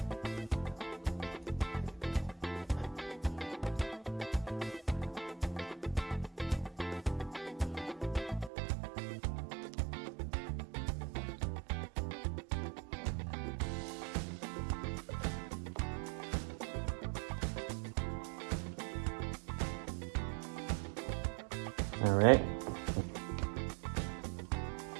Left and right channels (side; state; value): left; drops out; at 8.5 s